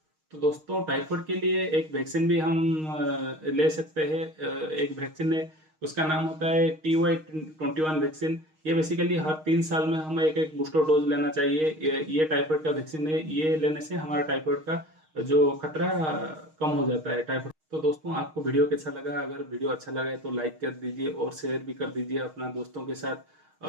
तो दोस्तों टाइफाइड के लिए एक वैक्सीन भी हम ले सकते हैं। एक वैक्सीन है, उसका नाम होता है TY21 वैक्सीन। ये बेसिकली हर 3 साल में हमें एक बूस्टर डोज लेना चाहिए। ये टाइफाइड का वैक्सीन है, ये लेने से हमारा टाइफाइड का जो खतरा कम हो जाता है टाइफाइड। तो दोस्तों आपको वीडियो कैसा लगा? अगर वीडियो अच्छा लगा है तो लाइक कर दीजिए और शेयर भी कर दीजिए अपना दोस्तों के साथ,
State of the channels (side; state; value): left; late; 6.4 ms